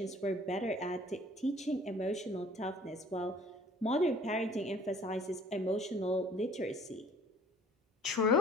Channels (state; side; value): normal; both; correlation 0.51